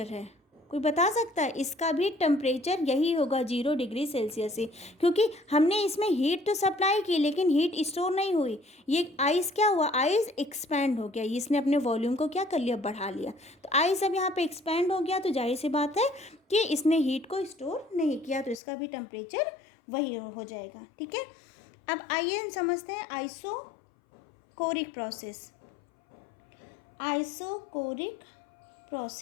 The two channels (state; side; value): drops out; right; at 18.6 s